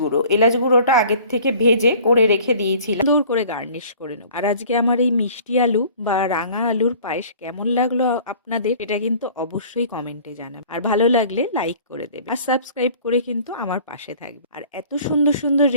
এলাচ গুঁড়োটা আগের থেকে ভেজে করে রেখে দিয়েছিলাম, সুন্দর করে গার্নিশ করে নেব। আর আজকে আমার এই মিষ্টি আলু বা রাঙা আলুর পায়েস কেমন লাগলো আপনাদের, এটা কিন্তু অবশ্যই কমেন্টে জানাবেন। আর ভালো লাগলে লাইক করে দেবেন আর সাবস্ক্রাইব করে কিন্তু আমার পাশে থাকবে। আর এত সুন্দর সুন্দর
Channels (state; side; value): inverted; both; correlation -0.48